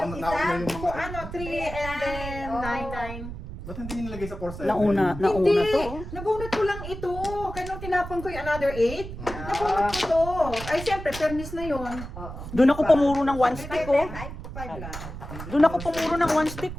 nauna isa. yung Kung mga... ano, 3 and then Oh. 9. Ba't hindi nyo nilagay sa 4-7? Nauna Hindi! to. Oh. Nabunot ko lang ito. Kaya nung tinapon ko yung another 8, nabunot ko to. Ay, siyempre, fairness na yun. Oo. Doon ako pumuro ng one stick, oh. 5 lang. Doon ako pumuro ng one stick,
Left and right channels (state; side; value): noise; right; rumble, 10 dB below the sound